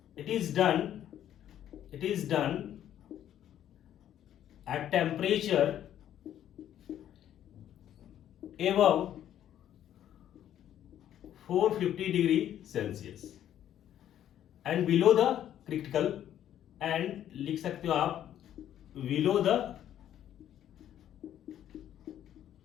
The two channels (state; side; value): quieter; right; 11.0 dB